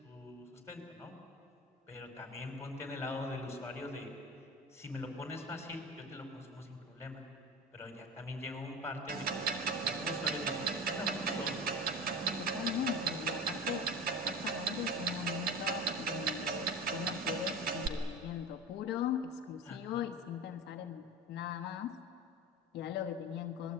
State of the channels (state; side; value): normal; both; correlation 0.30